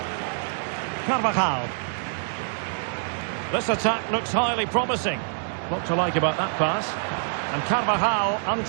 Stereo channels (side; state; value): left; silent; digital silence